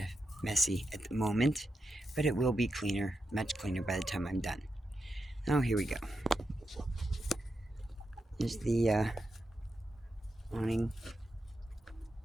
messy at the moment, but it will be cleaner, much cleaner by the time I'm done. Oh, here we go. Here's the awning.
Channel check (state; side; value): normal; both; correlation 0.87